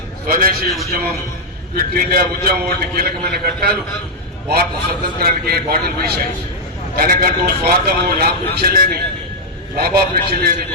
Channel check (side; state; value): both; normal; correlation -0.03